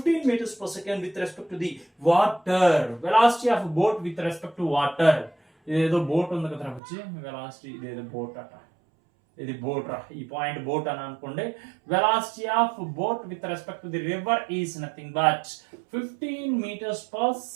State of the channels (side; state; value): left; drops out; at 6.8 s